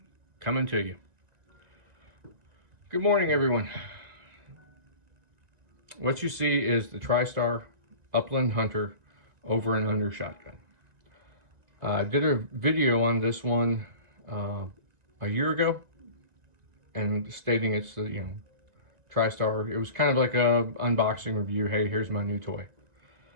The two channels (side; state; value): left; late; 2.0 ms